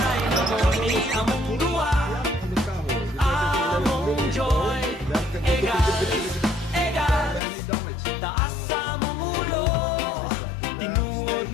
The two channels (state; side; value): drops out; right; at 7.4 s